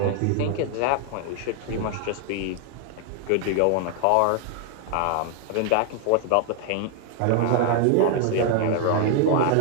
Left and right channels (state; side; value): different; both; correlation 0.00